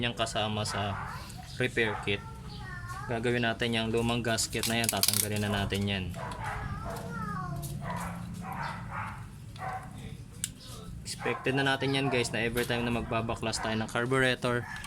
kasama sa repair kit. Gagawin natin yung lumang gasket na yan, tatanggalin na natin yan. Expected na natin yan guys na every time na magbabaklas tayo ng carburetor,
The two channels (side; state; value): both; identical; correlation 1.00